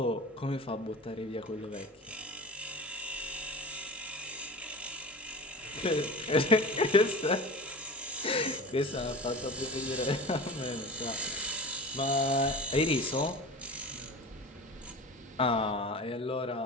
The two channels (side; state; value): both; normal; correlation 0.33